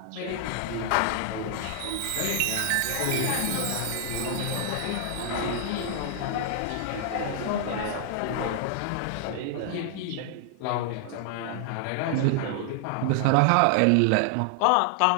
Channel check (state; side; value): different; both; correlation 0.00